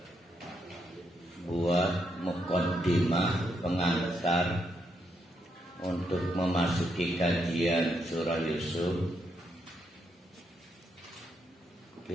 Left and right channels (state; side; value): normal; both; correlation 0.78